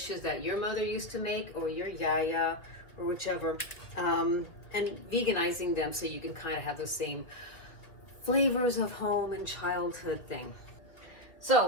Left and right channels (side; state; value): right; late; 1.9 ms